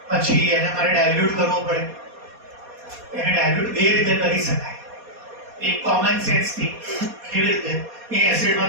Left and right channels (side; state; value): left; late; 4.2 ms